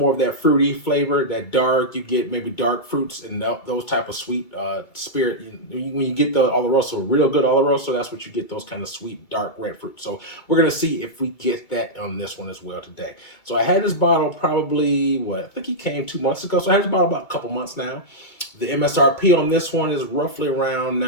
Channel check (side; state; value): right; late; 2.3 ms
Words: of that fruity flavor, that dark. You get maybe dark fruits and those type of sweet spirit. When you get the Oloroso, real good Oloroso, that's what you get, those kind of sweet, dark red fruit. So we're going to see if we get that on this one as well today. So I had this bottle probably, I think he came 2 months ago. So I had this bottle about a couple months now. The MSRP on this one is roughly around